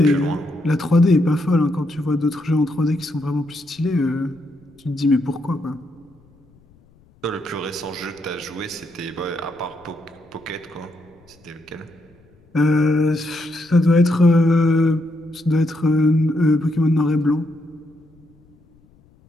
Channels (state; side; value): noise; left; rumble, 30 dB below the sound